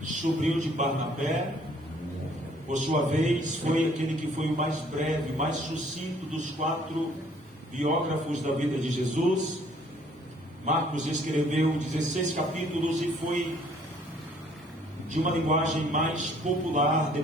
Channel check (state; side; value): normal; both; correlation 0.60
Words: sobrinho de Barnabé, por sua vez, foi aquele que foi o mais breve, mais sucinto dos 4 biógrafos da vida de Jesus. Marcos escreveu 16 capítulos e foi de uma linguagem mais popular